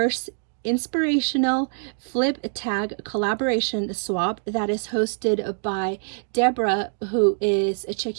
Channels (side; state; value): left; silent; digital silence